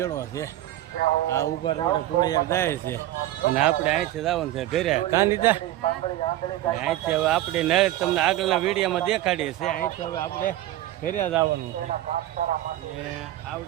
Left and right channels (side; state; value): left; quieter; 14.5 dB